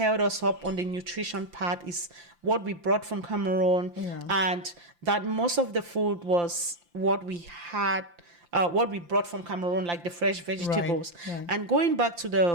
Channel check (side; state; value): left; late; 5.8 ms